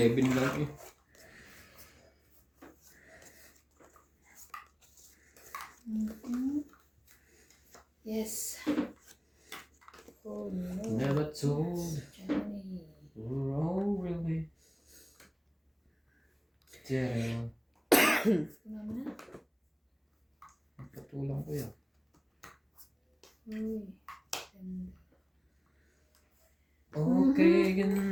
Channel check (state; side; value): identical; both; correlation 1.00